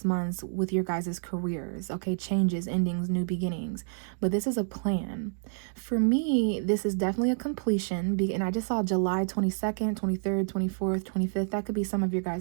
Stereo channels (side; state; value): left; silent; digital silence